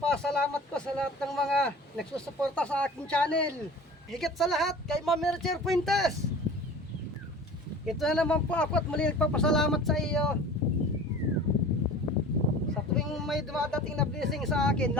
ko sa lahat ng mga nagsusuporta sa aking channel. Higit sa lahat kay Ma'am Mercher Fuentes. Ito na naman po ako at muli nagpapasalamat sa iyo. Sa tuwing may dumadating na blessing sa akin,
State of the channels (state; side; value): normal; both; correlation 0.40